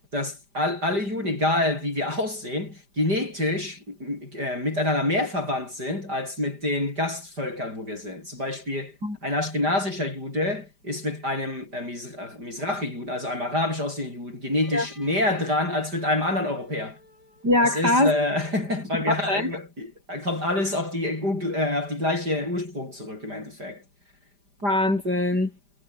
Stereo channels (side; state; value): left; late; 5.0 ms